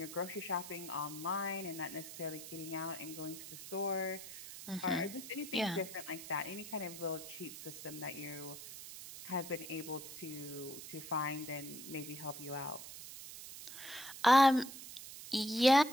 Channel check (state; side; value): noise; right; hiss, 12 dB below the sound